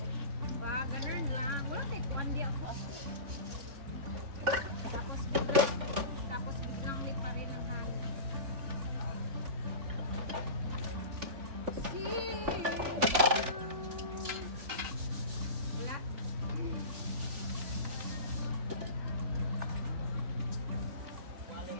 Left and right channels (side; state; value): left; late; 3.5 ms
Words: Ba, ganun lang. Wala tayo, kuwandi ako. Tapos biglang lipa rin ang hangin. Wala.